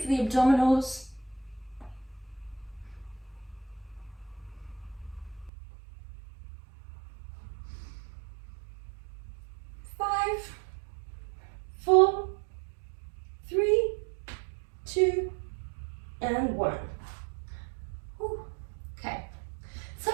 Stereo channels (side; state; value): left; drops out; at 5.5 s